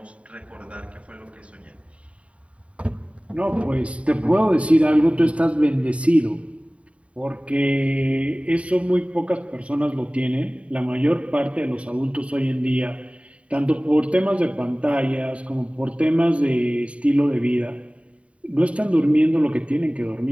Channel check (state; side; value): late; left; 0.064 ms